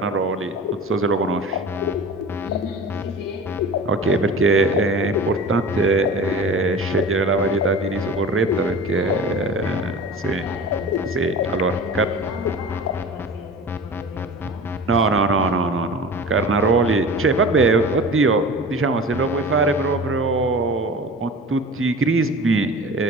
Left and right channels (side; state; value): both; normal; correlation 0.37